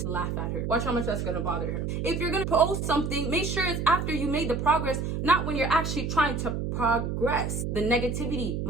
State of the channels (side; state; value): right; noise; hum, 2 dB below the sound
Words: laugh at her. Watch how much that's gonna bother her. If you're gonna post something, make sure it's after you made the progress, not when you're actually trying to progress. The negativity